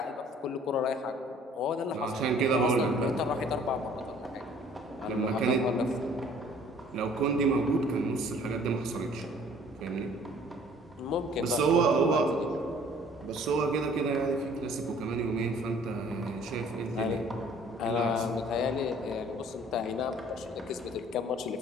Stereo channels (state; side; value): normal; both; correlation 0.54